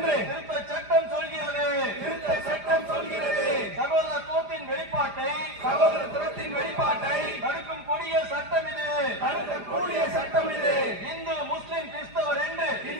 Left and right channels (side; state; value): left; late; 4.9 ms